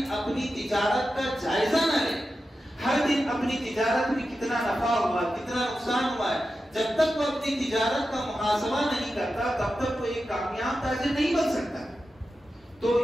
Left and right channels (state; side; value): normal; both; correlation 0.91